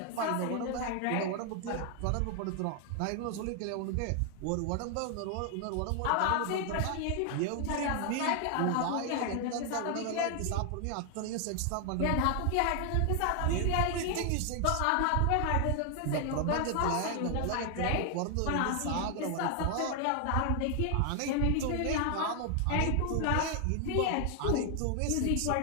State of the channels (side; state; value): both; different; correlation 0.00